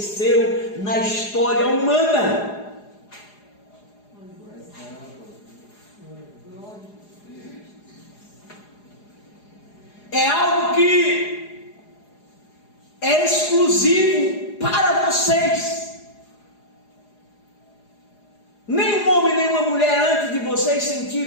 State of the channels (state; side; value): late; right; 4.8 ms